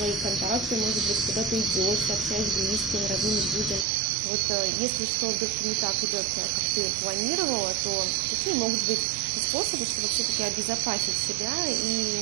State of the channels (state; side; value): drops out; left; at 3.9 s